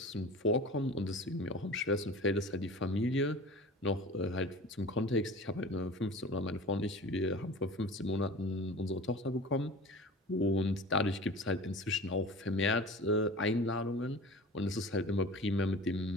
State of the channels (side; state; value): both; normal; correlation 0.38